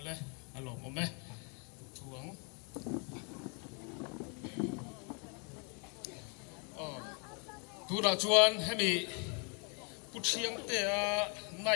alo mo me thuang tu ra chuan hemi puchiang te a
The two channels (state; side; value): quieter; right; 36.1 dB